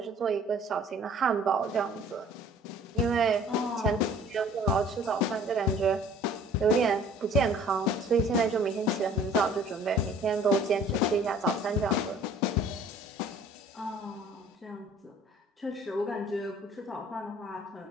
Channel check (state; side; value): normal; both; correlation 0.52